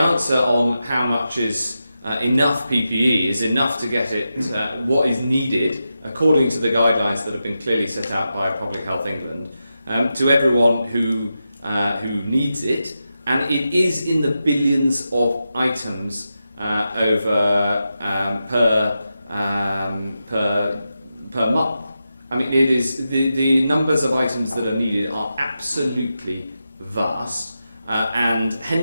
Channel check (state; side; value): inverted; both; correlation -0.89